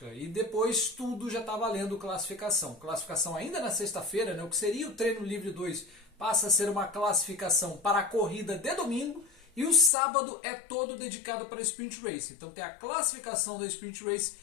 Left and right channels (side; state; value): right; drops out; at 9.9 s